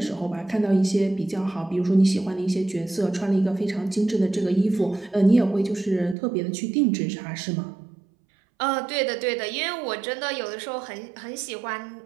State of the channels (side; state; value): left; drops out; at 6.2 s